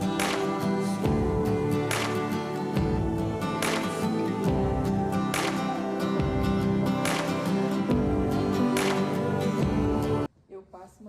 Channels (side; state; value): both; identical; correlation 1.00